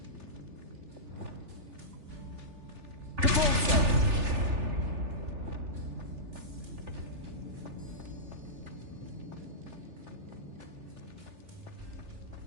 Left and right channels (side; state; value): left; late; 3.4 ms